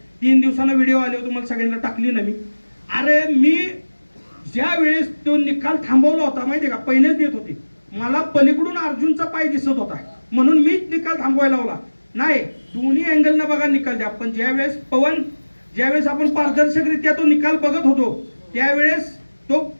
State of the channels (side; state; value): both; inverted; correlation -1.00